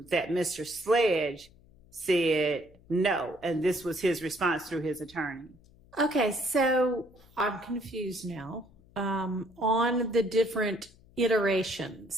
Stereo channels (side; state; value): left; noise; hum, 27 dB below the sound